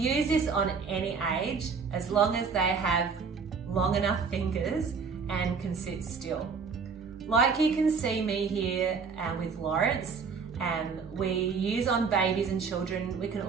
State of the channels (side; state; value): left; quieter; 5.4 dB